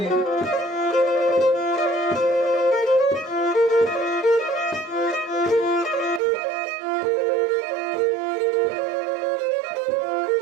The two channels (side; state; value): left; drops out; at 6.2 s